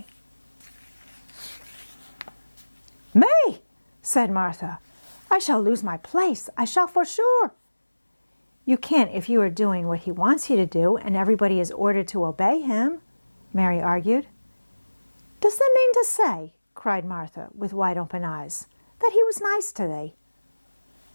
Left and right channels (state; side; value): inverted; both; correlation -1.00